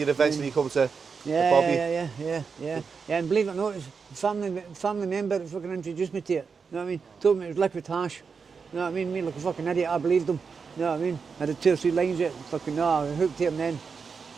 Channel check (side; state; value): left; quieter; 5.5 dB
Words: eventually come to Yeah, Bobby. yeah. And believe it or not, it's a family member that fucking introduced me to it. You know what I mean? Told me it was liquid hash. You know what I mean? Me like a fucking idiot, I believed him. You know what I mean? I had 2 or 3 lines it, fucking no, I hooked to him then.